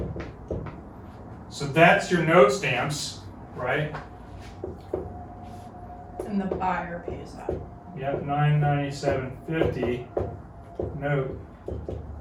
So that's your note stamps, right? And the buyer pays that. Yep, $997.50 note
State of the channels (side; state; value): both; identical; correlation 1.00